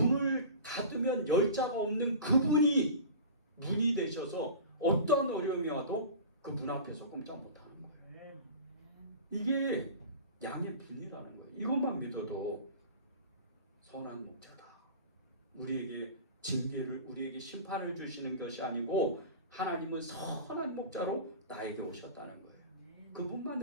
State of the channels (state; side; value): inverted; both; correlation -0.36